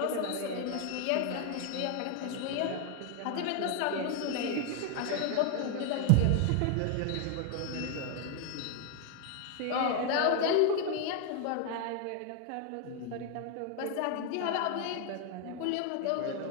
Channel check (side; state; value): both; different; correlation 0.01